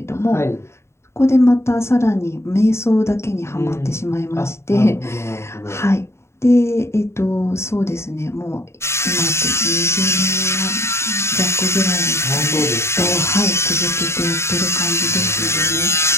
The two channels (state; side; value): late; right; 0.13 ms